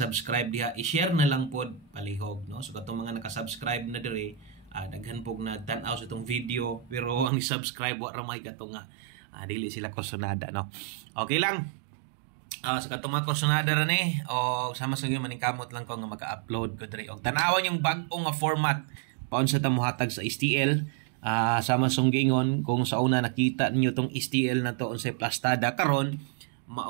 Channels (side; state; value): left; drops out; at 7.3 s